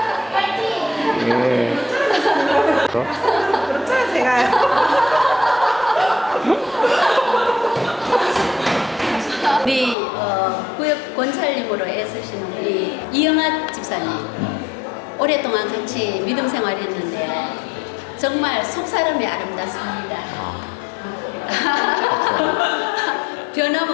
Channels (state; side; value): drops out; right; at 10.0 s